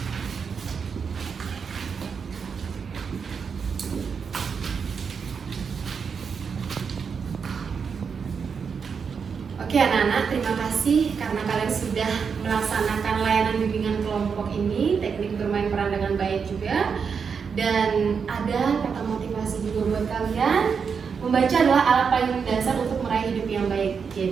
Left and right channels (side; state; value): left; quieter; 6.1 dB